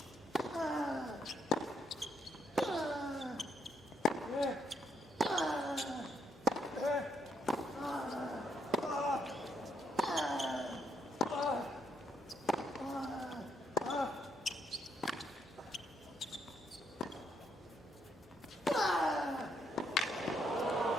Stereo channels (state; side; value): normal; both; correlation 0.75